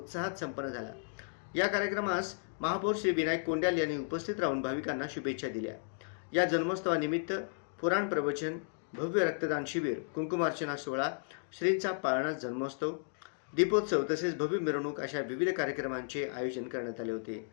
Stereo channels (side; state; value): right; silent; digital silence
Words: संपन्न झाला। या कार्यक्रमास महापौर श्री विनायक कोंड्याल यांनी उपस्थित राहून भाविकांना शुभेच्छा दिल्या। या जन्मोत्सवानिमित्त पुराण प्रवचन, भव्य रक्तदान शिबिर, कुंकुमार्चना सोहळा, श्रींचा पाळणा जन्मोत्सव, दीपोत्सव तसेच भव्य मिरवणूक अशा विविध कार्यक्रमांचे आयोजन करण्यात आले होते।